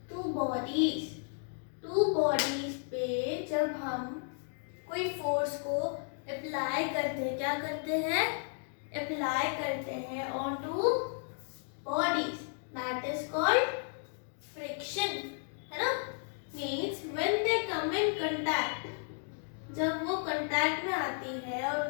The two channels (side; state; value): right; silent; 55 dB below the other